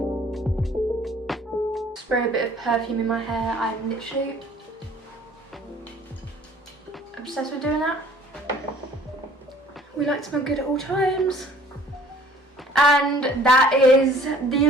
Spray a bit of perfume in my hair. I'm literally obsessed with doing that. We like to smell good at all times. And that is the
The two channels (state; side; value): normal; both; correlation 0.53